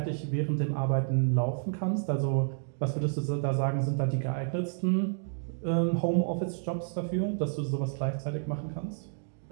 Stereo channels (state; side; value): silent; left; digital silence